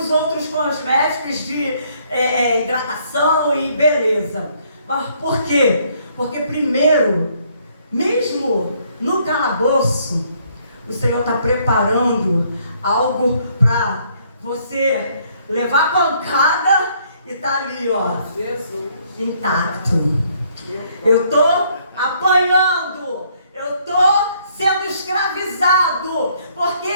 outros cosméticos de hidratação e beleza. Por quê? Porque primeiro, mesmo no calabouço, o Senhor está preparando algo para você levar pancada e tá ali, ó, Jesus, intacto. Eu estou apanhando, eu estou sendo escravizado, porque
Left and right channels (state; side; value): inverted; both; correlation -0.66